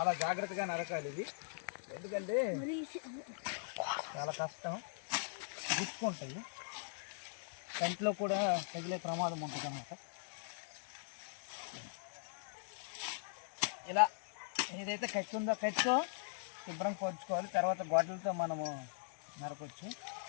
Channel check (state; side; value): silent; right; digital silence